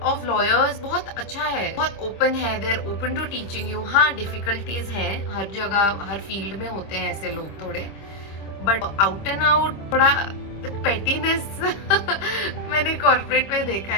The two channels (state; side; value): late; right; 26 ms